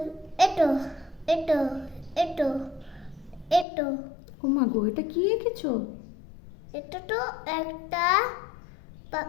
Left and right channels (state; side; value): drops out; right; at 3.7 s